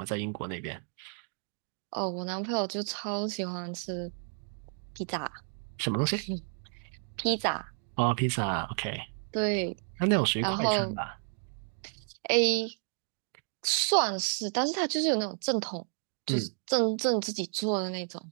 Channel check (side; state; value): left; silent; 57 dB below the other